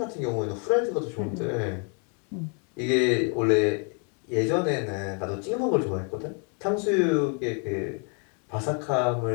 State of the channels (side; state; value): right; quieter; 39.1 dB